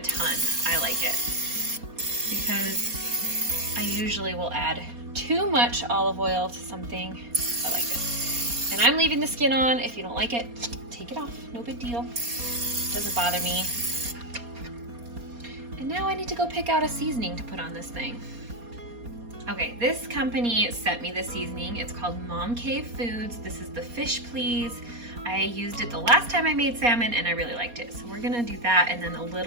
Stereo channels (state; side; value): late; left; 4.2 ms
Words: ton. I like it because I usually will add 2 too much olive oil to something. I like this. And I'm leaving the skin on. If you don't like it, take it off. No big deal. Doesn't bother me. And now I need to go pick out a seasoning to put on this thing. Okay, this company sent me the seasoning. It's called Mom Cave Foods. This is the Fish Please. I used it the last time I made salmon and I really liked it. So we're gonna do that and then a